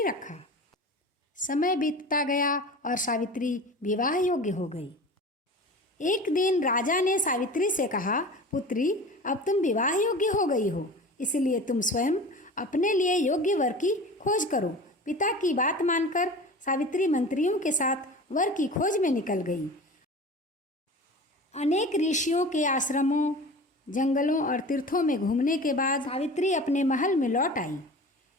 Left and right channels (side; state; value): both; normal; correlation 0.36